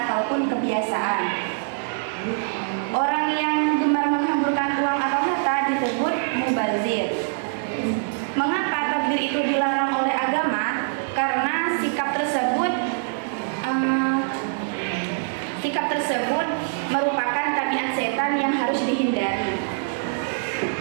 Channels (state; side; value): silent; left; digital silence